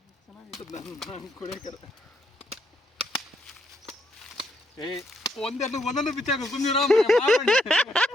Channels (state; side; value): normal; both; correlation 0.76